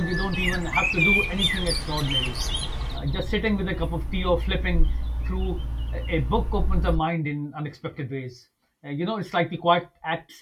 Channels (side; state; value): both; identical; correlation 1.00